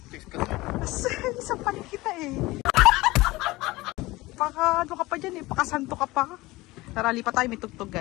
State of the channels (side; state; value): right; quieter; 20.2 dB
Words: Chicks kasi. Isang pa kita eh. Ano ka pa dyan eh. Pakasanto ka pa. Tara, lipat tayo. May tugtog